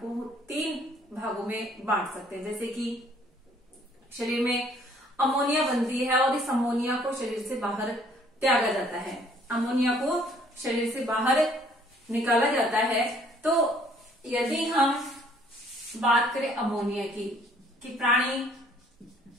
3 भागों में बांट सकते हैं। जैसे कि शरीर में अमोनिया बनती है और इस अमोनिया को शरीर से बाहर त्यागा जाता है। अमोनिया को शरीर से बाहर निकाला जाता है। तो यदि हम बात करें अमोनिया की, कि प्राणी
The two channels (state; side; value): normal; both; correlation 0.60